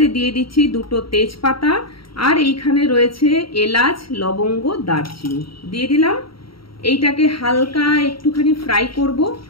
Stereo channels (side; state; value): right; late; 0.74 ms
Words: দিয়ে দিচ্ছি 2টো তেজপাতা, আর এইখানে রয়েছে এলাচ, লবঙ্গ, দারচিনি দিয়ে দিলাম। এইটাকে হালকা একটুখানি ফ্রাই করব,